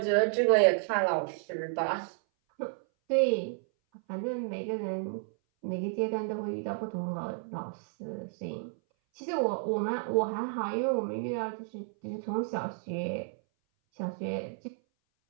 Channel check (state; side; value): silent; left; 57 dB below the other